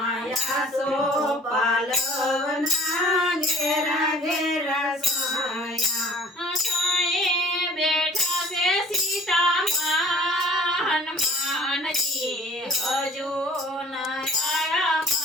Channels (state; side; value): normal; both; correlation 0.51